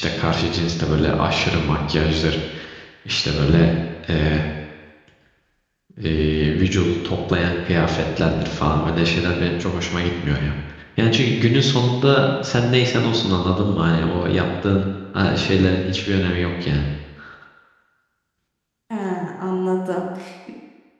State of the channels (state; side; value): identical; both; correlation 1.00